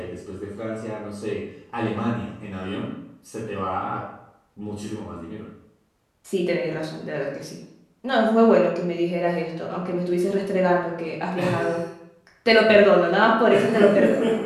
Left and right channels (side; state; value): both; identical; correlation 1.00